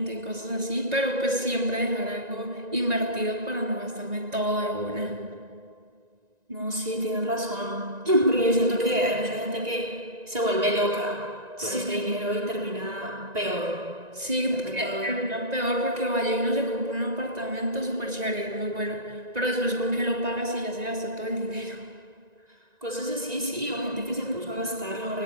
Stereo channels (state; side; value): late; left; 1.9 ms